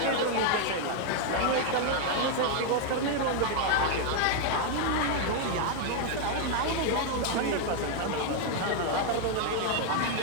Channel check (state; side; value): different; both; correlation 0.00